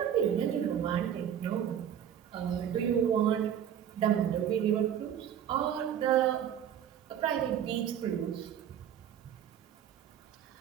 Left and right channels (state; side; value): quieter; left; 9.4 dB